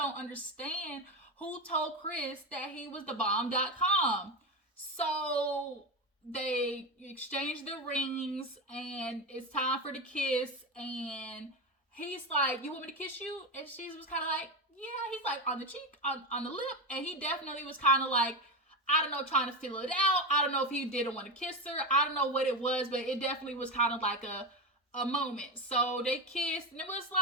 understand who told Kris that he was the bomb.com. So they exchange the rings and it's time for the kiss. And he's like, you want me to kiss you? And she was kind of like, yeah. He's like, on the cheek, on the lip. And he definitely was kind of like, I don't know, trying to feel it out. I don't know if he didn't want to kiss her. I don't know what it was, but it definitely was kind of like a moment. So they kissed and it was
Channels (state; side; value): normal; both; correlation 0.16